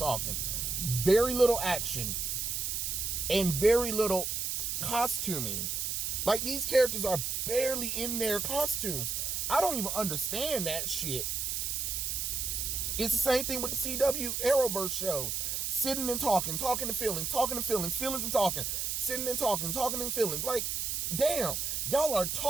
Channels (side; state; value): right; noise; hiss, 1 dB below the sound